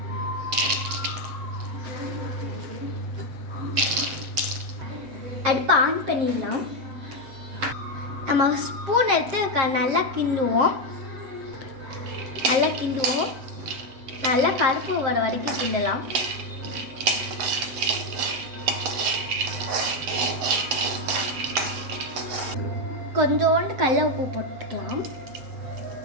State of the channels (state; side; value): late; left; 7.5 ms